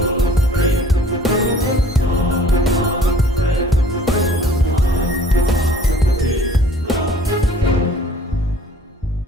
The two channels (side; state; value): both; normal; correlation 0.52